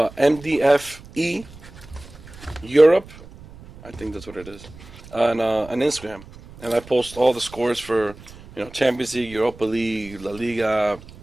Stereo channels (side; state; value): right; noise; rumble, 19 dB below the sound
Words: Europe. I think that's what it is. On Instagram. And I post all the scores for, Champions League, Europa League, La Liga,